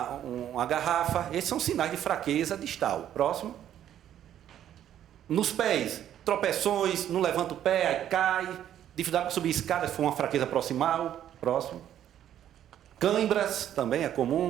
garrafa. Esses são sinais de fraqueza distal. Próximo. Nos pés, tropeções, não levanta o pé, aí cai. Dificuldade para subir escada, se for uma fraqueza proximal. Próximo. Cãibras, também é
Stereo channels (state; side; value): quieter; left; 10.9 dB